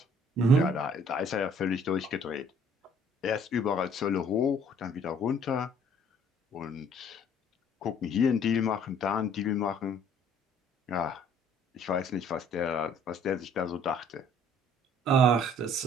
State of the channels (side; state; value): both; normal; correlation 0.58